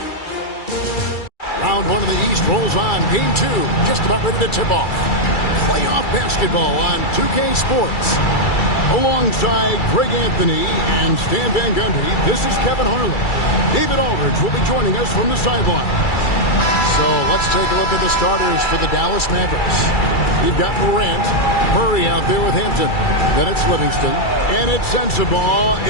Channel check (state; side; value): late; right; 2.3 ms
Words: Round 1 of the East rolls on. Game 2 just about ready to tip off. Playoff basketball on 2K Sports. Alongside Greg Anthony and Stan Van Gundy, this is Kevin Harlan. David Aldridge will be joining us from the sideline. So let's take a look at the starters for the Dallas Mavericks. You've got Morant, Murray out there with Hampton. Then it's Livingston. And it's Sensabaugh